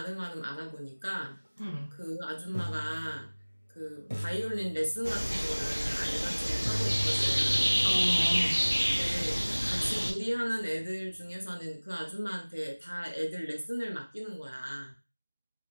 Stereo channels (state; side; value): inverted; both; correlation -1.00